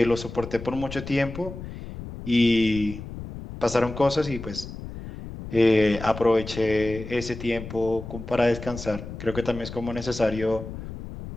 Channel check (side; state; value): left; noise; rumble, 11 dB below the sound